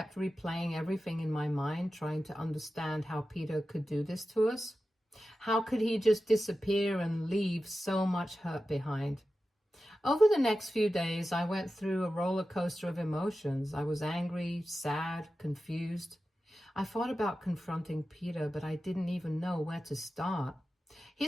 replaying everything in my mind, trying to understand how Peter could do this to us. How could he just disappear and leave so much hurt behind? Over the next few days, I went through a roller coaster of emotions. I was angry, sad, confused. I thought about confronting Peter, but I didn't even know where to start.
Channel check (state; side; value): normal; both; correlation 0.93